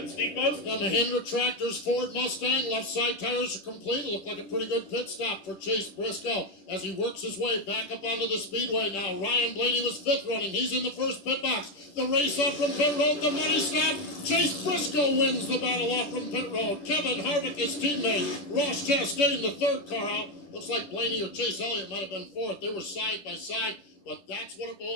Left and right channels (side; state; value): right; late; 10 ms